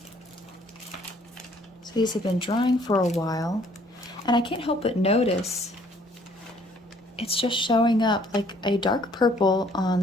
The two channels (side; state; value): both; normal; correlation 0.61